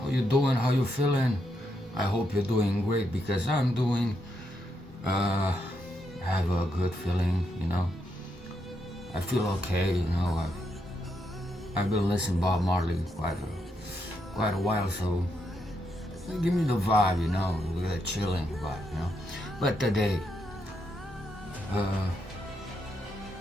you doing? How you feeling? I hope you're doing great because I'm doing. Uh, I have a good feeling. I feel okay. I've been listening Bob Marley quite a while, so give me the vibe. With a chilling vibe. But today, uh,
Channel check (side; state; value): both; normal; correlation 0.80